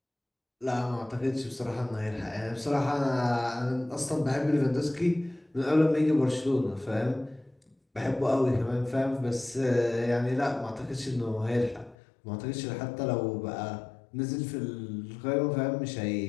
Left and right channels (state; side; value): drops out; right; at 12.0 s